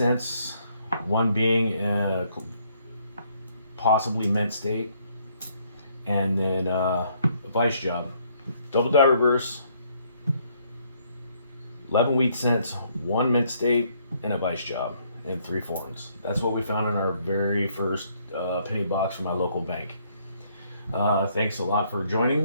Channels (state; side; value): inverted; both; correlation -0.68